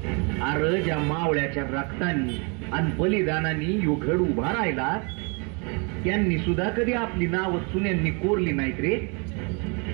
अरे ज्या मावळ्याच्या रक्तानी आणि बलिदानाने यो घड उभा राहिला, त्यांनी सुद्धा कधी आपली नाव चुन्यांनी कोरली नाहीत रे.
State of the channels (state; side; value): quieter; left; 33.7 dB